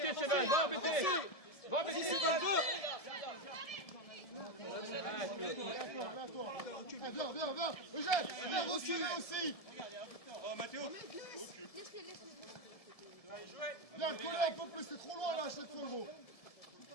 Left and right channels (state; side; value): late; right; 1.7 ms